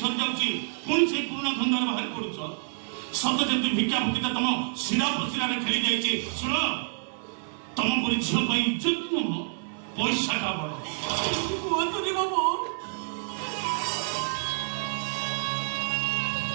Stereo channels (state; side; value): silent; left; 55 dB below the other